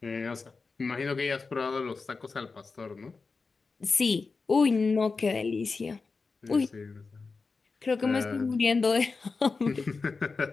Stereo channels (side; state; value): right; quieter; 4.4 dB